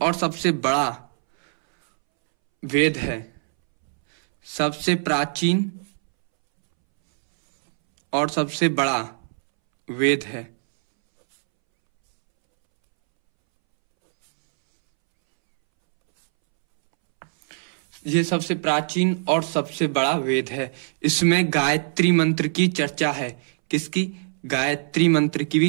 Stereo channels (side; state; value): left; silent; 64 dB below the other